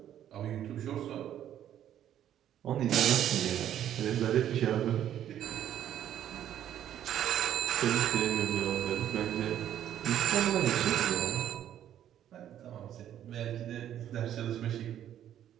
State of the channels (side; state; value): left; quieter; 10.8 dB